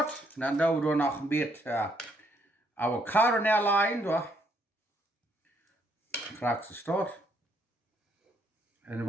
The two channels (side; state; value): both; normal; correlation 0.71